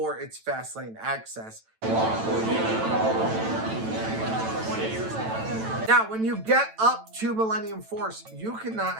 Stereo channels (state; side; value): late; left; 9.0 ms